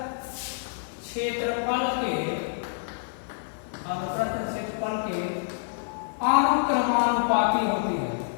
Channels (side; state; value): right; silent; 56 dB below the other